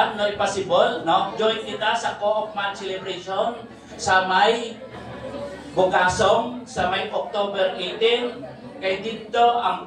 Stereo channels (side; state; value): both; identical; correlation 1.00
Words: no, possible, no? Join kita sa Co-op Month Celebration sa may Bukasong sa may October 18, kay dito